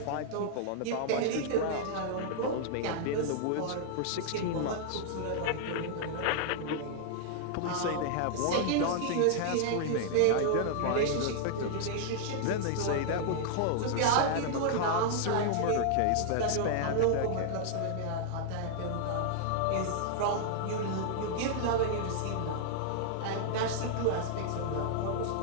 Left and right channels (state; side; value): different; both; correlation -0.01